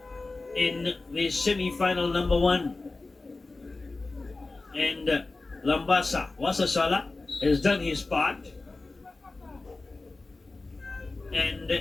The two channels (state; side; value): quieter; right; 3.4 dB